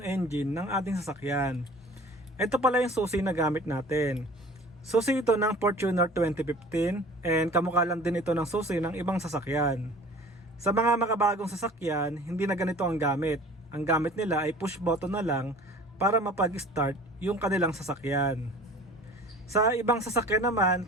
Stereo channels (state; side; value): normal; both; correlation 0.45